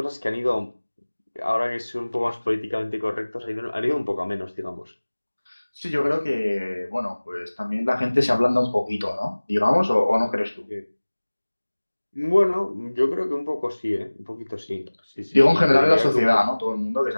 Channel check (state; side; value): inverted; both; correlation -1.00